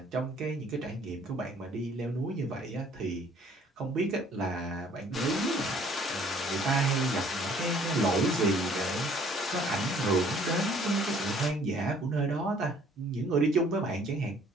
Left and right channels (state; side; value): normal; both; correlation 0.58